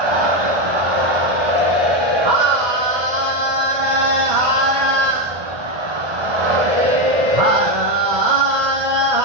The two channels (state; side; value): late; left; 1.2 ms